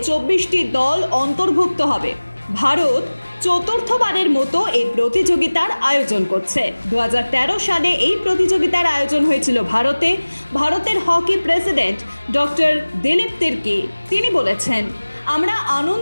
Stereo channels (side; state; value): both; inverted; correlation -1.00